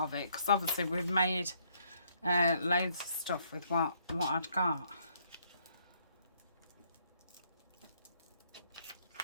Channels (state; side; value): inverted; both; correlation -0.68